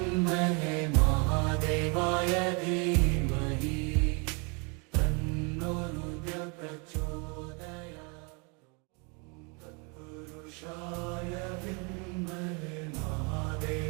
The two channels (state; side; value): quieter; left; 32.9 dB